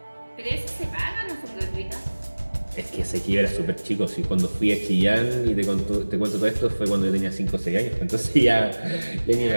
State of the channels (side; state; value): both; inverted; correlation -1.00